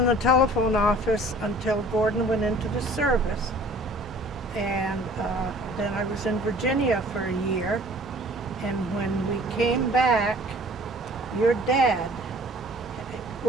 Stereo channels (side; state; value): both; normal; correlation 0.50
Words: the telephone office until Gordon went into the service. And then I was in Virginia for a year. And when we came back, your dad,